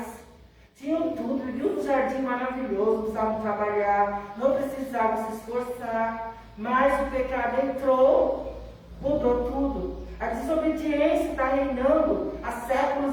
Tinham tudo, viviam um jardim maravilhoso, não precisavam trabalhar, não precisavam se esforçar. Mas o pecado entrou, mudou tudo. A desobediência está reinando há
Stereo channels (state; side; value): identical; both; correlation 1.00